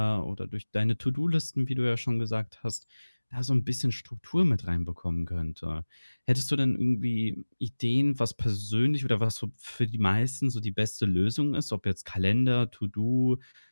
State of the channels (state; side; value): inverted; both; correlation -1.00